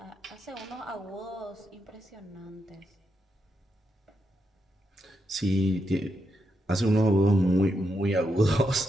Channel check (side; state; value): both; normal; correlation 0.83